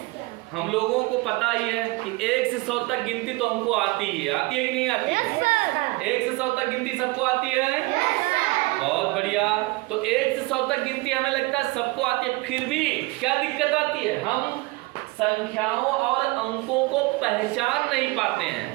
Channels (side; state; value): left; quieter; 23.0 dB